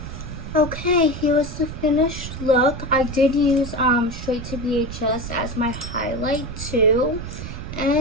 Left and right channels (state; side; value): noise; right; rumble, 9 dB below the sound